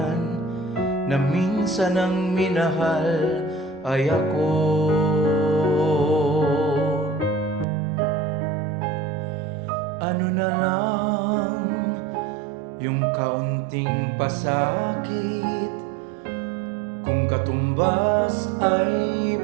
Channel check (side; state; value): left; drops out; at 7.7 s